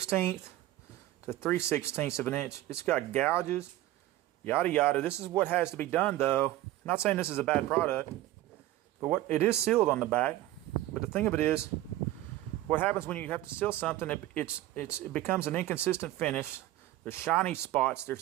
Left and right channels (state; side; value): quieter; left; 15.3 dB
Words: to 3/16 of an inch. It's got gouges, yada yada. This is what has to be done, though. I'm not saying this is a bad product, but it is sealed on the back. But the thing of it is, what happens when you have to seal something? It becomes an inconsistent finish. There's shiny spots.